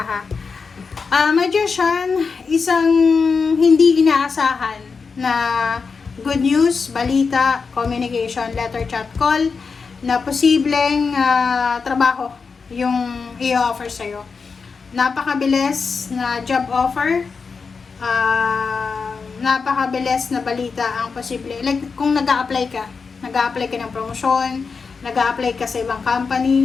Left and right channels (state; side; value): quieter; right; 5.1 dB